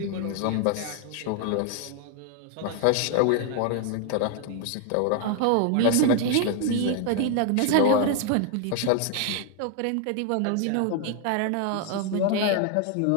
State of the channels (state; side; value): different; both; correlation 0.00